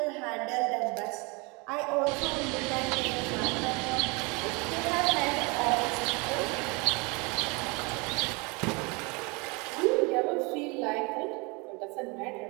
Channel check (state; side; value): quieter; left; 29.1 dB